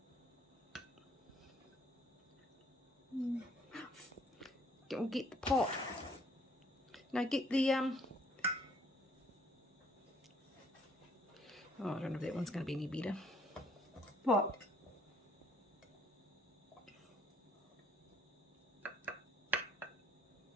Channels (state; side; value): normal; both; correlation 0.63